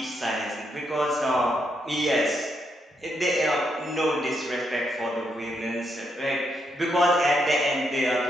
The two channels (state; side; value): normal; both; correlation 0.78